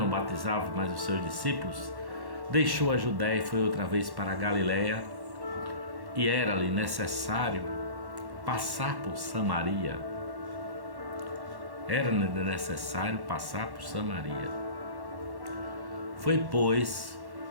batizava mais os seus discípulos, deixou a Judéia e foi outra vez para a Galiléia, e era-lhe necessário passar por Samaria. Era-lhe necessário passar por Samaria. Foi, pois,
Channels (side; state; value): left; late; 1.1 ms